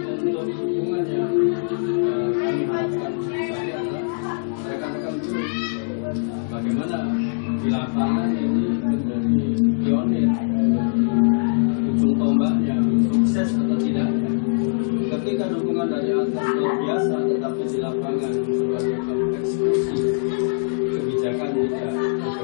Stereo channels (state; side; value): silent; right; digital silence